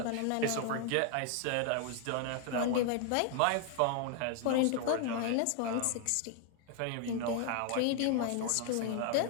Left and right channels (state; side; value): different; both; correlation 0.00